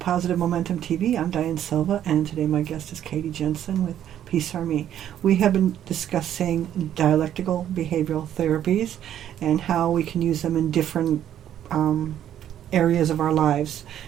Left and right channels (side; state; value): left; quieter; 10.8 dB